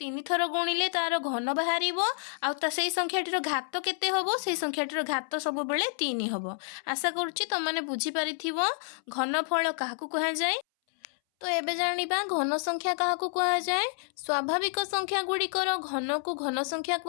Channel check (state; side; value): silent; right; 58 dB below the other